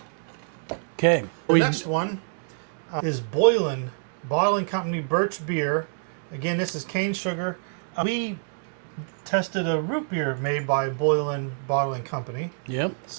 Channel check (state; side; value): silent; left; 59 dB below the other